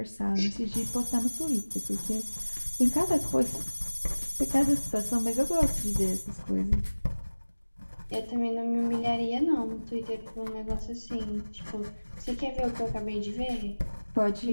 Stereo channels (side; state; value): both; inverted; correlation -1.00